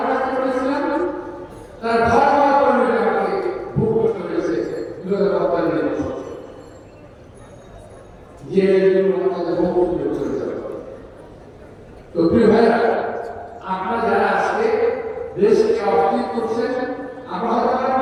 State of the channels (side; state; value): both; identical; correlation 1.00